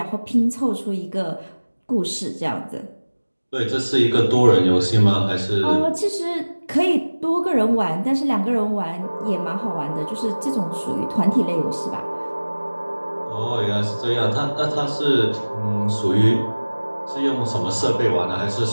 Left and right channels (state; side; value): inverted; both; correlation -1.00